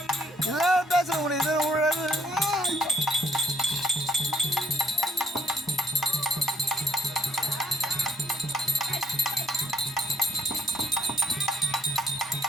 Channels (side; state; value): both; normal; correlation 0.70